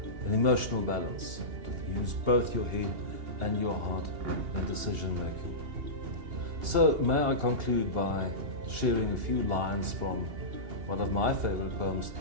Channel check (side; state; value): left; late; 2.8 ms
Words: an emotional balance, to use both your head and your heart in decision making. So may I conclude by sharing a few lines from one of my favorite poems